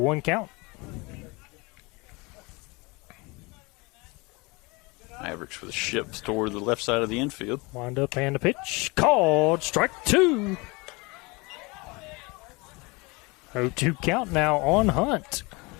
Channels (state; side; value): quieter; right; 26.2 dB